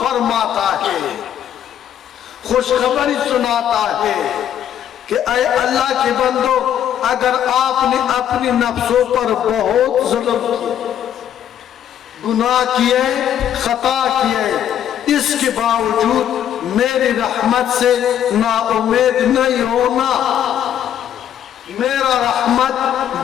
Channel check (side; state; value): right; quieter; 10.2 dB